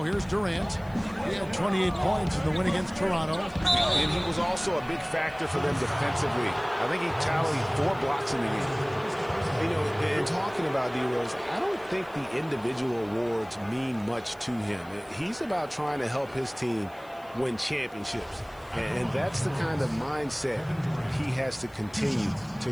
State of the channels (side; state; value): left; noise; hiss, 28 dB below the sound